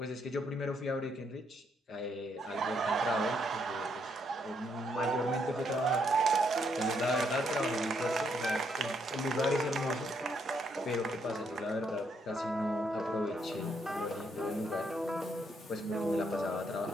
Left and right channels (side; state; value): both; normal; correlation 0.74